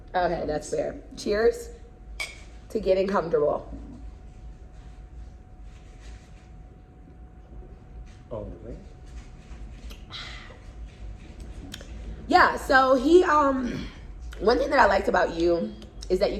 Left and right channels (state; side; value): identical; both; correlation 1.00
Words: Okay, that's fair. Cheers to getting comfortable. All the way. Yeah, so he one thing that I liked about you is that you